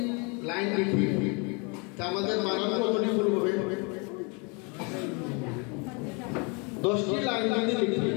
লাইন লিখি তা আমাদের বানান কতটি ভুল হবে? 10টি লাইন যদি লিখি,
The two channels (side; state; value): right; quieter; 32.1 dB